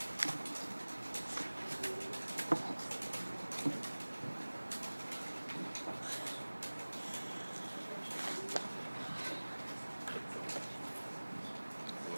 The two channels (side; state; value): both; inverted; correlation -1.00